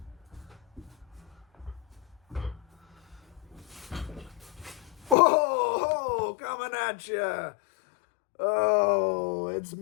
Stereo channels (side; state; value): right; drops out; at 5.2 s